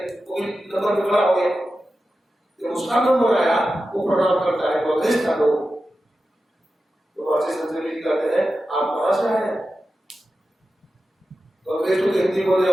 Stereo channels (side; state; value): both; normal; correlation 0.92